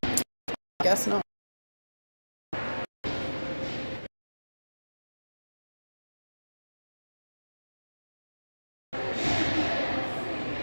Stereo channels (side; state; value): both; inverted; correlation -1.00